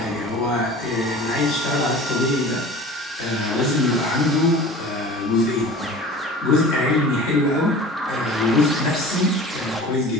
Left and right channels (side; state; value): both; normal; correlation 0.40